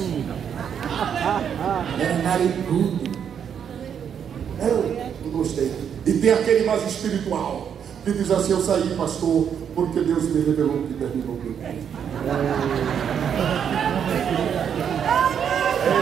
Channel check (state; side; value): quieter; left; 8.1 dB